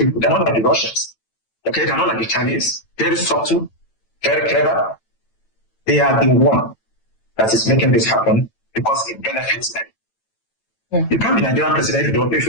They're not like the Russians. Okay, they're not like the Chinese. Very subtle, very clever. They are the one that is making this happen because it benefits them. Yeah. You can't be Nigerian president if you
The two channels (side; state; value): right; late; 9.0 ms